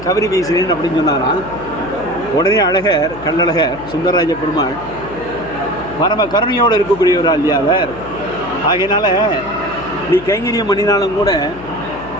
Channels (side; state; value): left; noise; hum, 16 dB below the sound